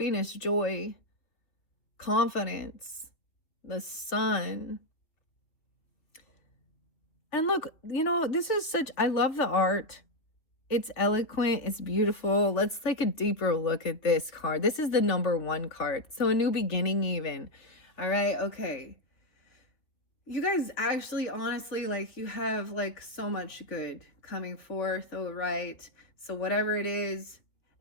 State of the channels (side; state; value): right; late; 3.3 ms